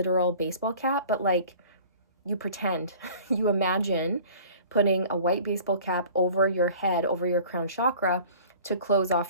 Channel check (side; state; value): both; inverted; correlation -0.46